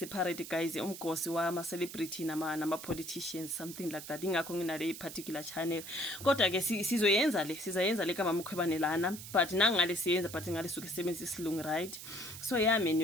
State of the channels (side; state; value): right; noise; hiss, 11 dB below the sound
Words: guys umgosi wama celebrity nama politicians, something like that. Ingakho nginale particular channel. Kodwa ke sizayenza le kama Mkhwebane lana, but nangale siyenza but ngale suke sebenzisa isilungu, right? So yeah man